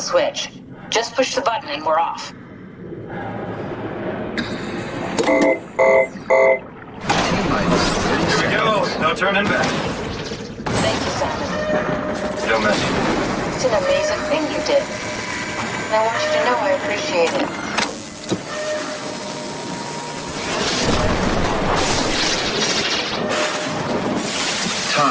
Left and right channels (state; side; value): identical; both; correlation 1.00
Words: Just push the button and we're off. Here we go. No turning back. Thank you, Simon. Don't mention it. It's an amazing thing you did. And I want you to know I appreciate it.